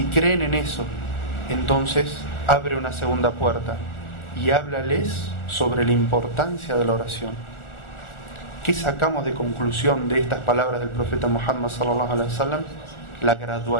creen en eso, entonces abre una segunda puerta y háblales sobre la importancia de la oración. ¿Qué sacamos de conclusión de estas palabras del profeta Muhammad sallallahu alaihi wasallam? La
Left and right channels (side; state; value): right; late; 1.4 ms